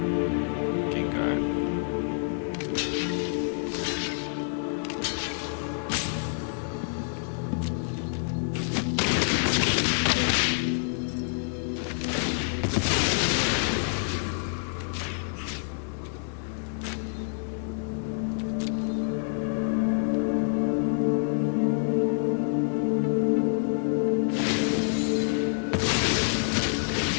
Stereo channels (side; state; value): right; silent; digital silence